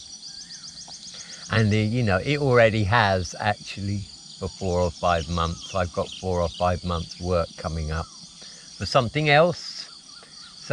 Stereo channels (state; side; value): identical; both; correlation 1.00